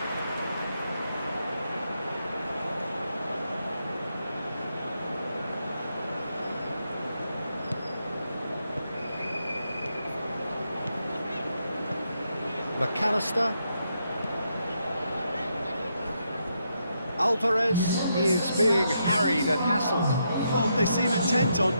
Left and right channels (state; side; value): inverted; both; correlation -0.80